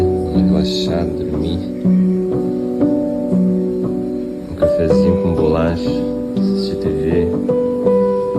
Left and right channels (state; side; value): identical; both; correlation 1.00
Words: uma relaxada, dormir. Um cafezinho com bolacha, assistir TV.